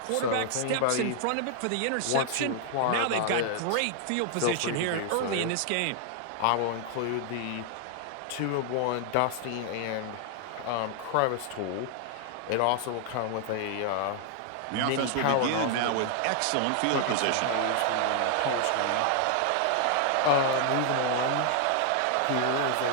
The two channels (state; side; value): different; both; correlation 0.00